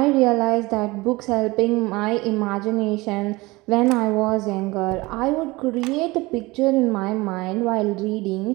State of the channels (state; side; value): quieter; left; 22.0 dB